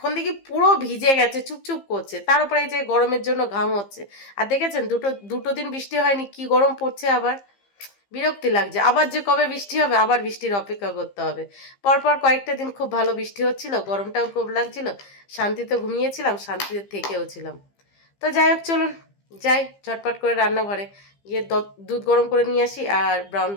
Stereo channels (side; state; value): right; late; 15 ms